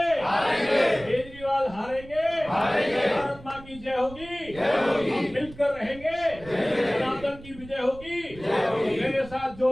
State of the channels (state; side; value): noise; right; rumble, 18 dB below the sound